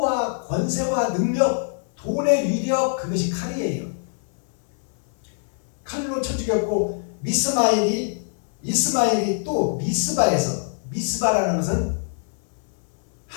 권세와 능력, 돈의 위력, 그것이 칼이에요. 칼로 쳐 죽였고, 이스마엘이 또 미스바에서, 미스바라는 것은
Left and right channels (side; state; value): right; silent; 63 dB below the other